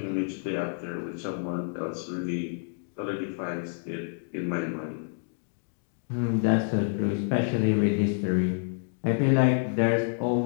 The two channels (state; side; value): silent; right; digital silence